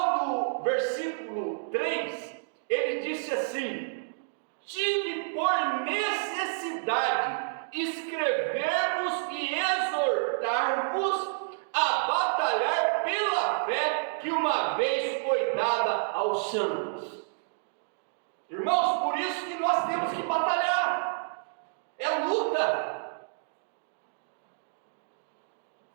do versículo 3, ele disse assim: tive por necessidade escrever-vos e exortar-vos a batalhar pela fé que uma vez foi dada aos santos. Irmãos, por isso que nós temos que batalhar, é luta.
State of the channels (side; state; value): left; silent; digital silence